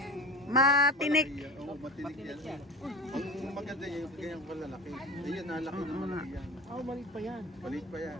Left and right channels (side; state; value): both; normal; correlation 0.31